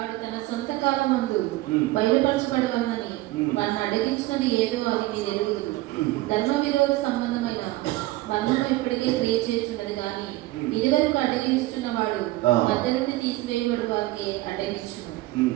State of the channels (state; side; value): quieter; left; 18.3 dB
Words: తన సొంత కాలమందు బయలుపరచబడవలని వాడిని అడిగించినది ఏదో అది మీరు ఎరుగుదురు. ధర్మ విరోధ సంబంధమైన బంధము ఇప్పటికే క్రియ చేస్తున్నది కానీ ఇదివరకు అడ్డగించుచున్న వాడు మధ్య నుండి తీసివేయబడు వారికి అడ్డగించును.